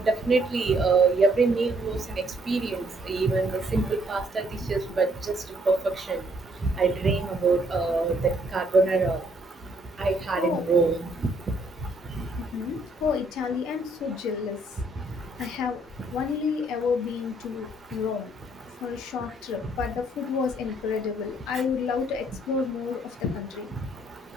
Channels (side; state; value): both; normal; correlation 0.68